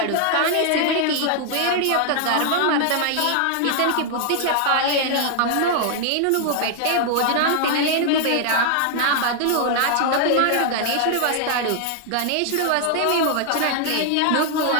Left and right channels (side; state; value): both; different; correlation 0.00